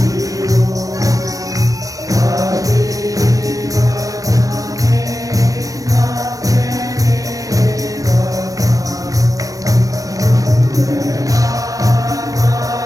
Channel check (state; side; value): late; left; 0.16 ms